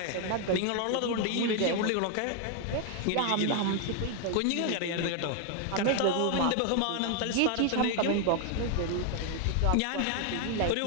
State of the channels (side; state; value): both; different; correlation 0.01